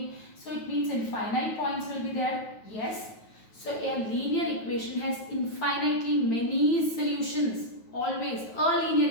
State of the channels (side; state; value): right; late; 9.3 ms